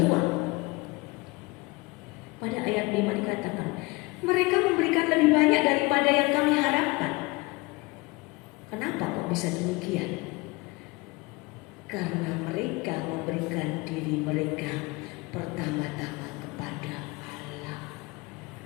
Pada ayat 5 dikatakan, mereka memberikan lebih banyak daripada yang kami harapkan. Kenapa kok bisa demikian? Karena mereka memberikan diri mereka pertama-tama kepada Allah.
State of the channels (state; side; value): quieter; right; 24.8 dB